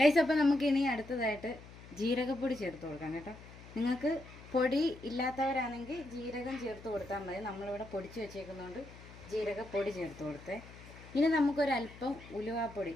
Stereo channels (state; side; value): noise; left; hum, 18 dB below the sound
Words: അപ്പോൾ നമുക്കിനി അടുത്തതായിട്ട് ജീരകപ്പൊടി ചേർത്ത് കൊടുക്കാം കേട്ടോ. നിങ്ങൾക്ക് പൊടി ഇല്ലാത്തവരാണെങ്കിൽ ജീരകം ചേർത്ത് കൊടുത്താൽ മതി. നമ്മളിവിടെ പൊടിച്ച് വെച്ചേക്കുന്നതുകൊണ്ട് ജീരകപ്പൊടി ചേർത്ത് കൊടുത്തേ. ഇനി നമുക്കൊരല്പം ഉലുവാപ്പൊടി